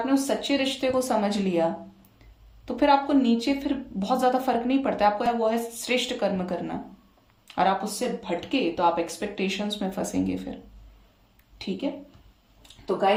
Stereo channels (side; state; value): both; identical; correlation 1.00